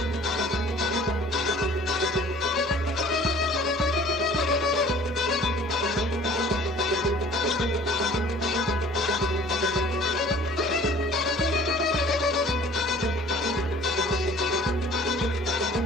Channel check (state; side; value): normal; both; correlation 0.50